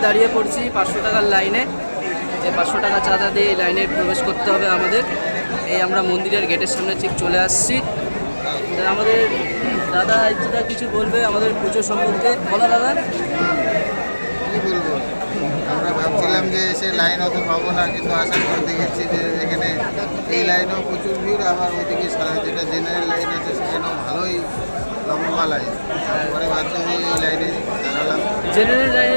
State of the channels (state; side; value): inverted; both; correlation -1.00